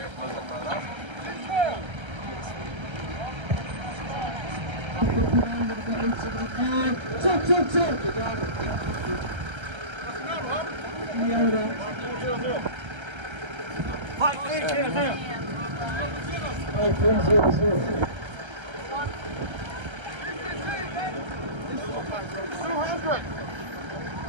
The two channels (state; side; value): late; left; 1.3 ms